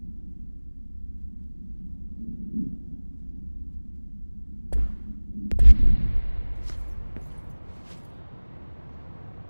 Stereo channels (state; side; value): inverted; both; correlation -1.00